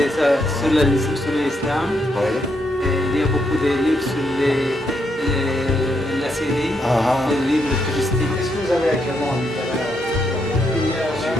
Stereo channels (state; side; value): normal; both; correlation 0.78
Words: ça, sur l'islam. Oui. Il y a beaucoup de livres sur la Syrie, les livres touristiques. Qu'est-ce que vous avez actuellement en littéraire?